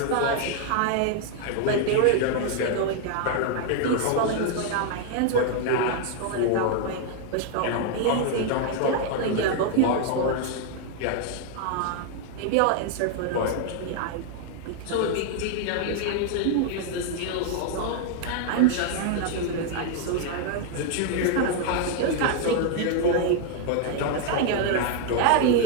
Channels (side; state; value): both; different; correlation 0.00